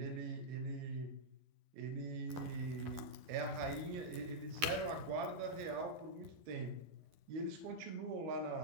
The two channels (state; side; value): late; left; 12 ms